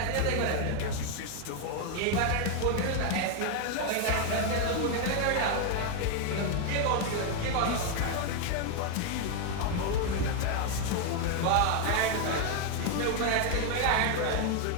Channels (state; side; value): different; both; correlation 0.00